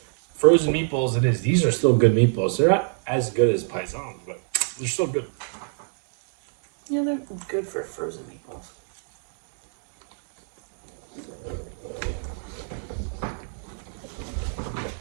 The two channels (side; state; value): left; silent; digital silence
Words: frozen meatballs it is. These are still good meatballs. They're not as good as paisans, but they're still good. Yeah, they're good for frozen meatballs.